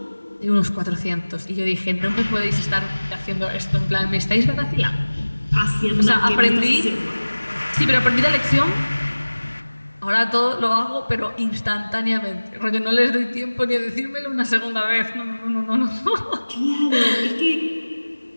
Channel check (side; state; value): both; inverted; correlation -1.00